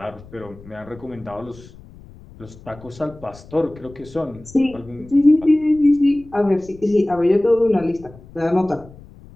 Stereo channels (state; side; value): noise; left; rumble, 20 dB below the sound